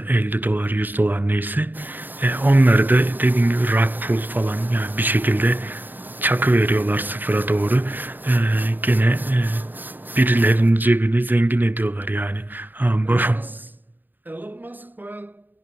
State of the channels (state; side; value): late; left; 0.090 ms